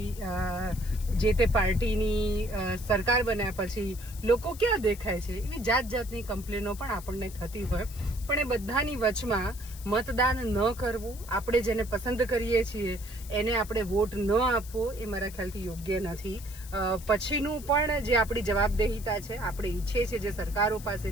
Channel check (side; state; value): left; noise; hiss, 17 dB below the sound